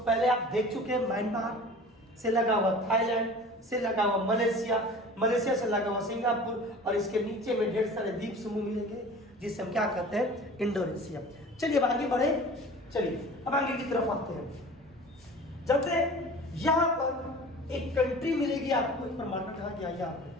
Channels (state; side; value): normal; both; correlation 0.41